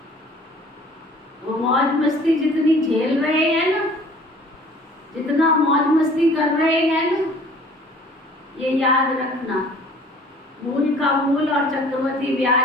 वो मौज मस्ती जितनी झेल रहे हैं ना, जितना मौज मस्ती कर रहे हैं ना, ये याद रखना, मूल का मूल और चक्रवर्ती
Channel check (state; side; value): normal; both; correlation 0.51